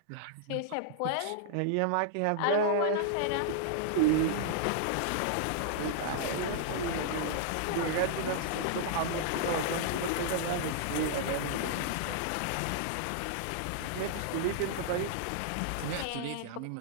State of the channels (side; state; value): both; different; correlation -0.01